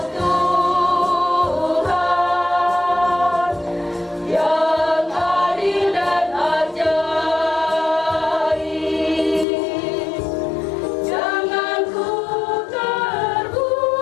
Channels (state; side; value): drops out; right; at 9.5 s